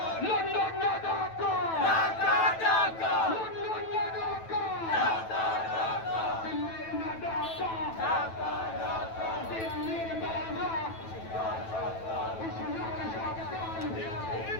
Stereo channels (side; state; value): right; late; 9.1 ms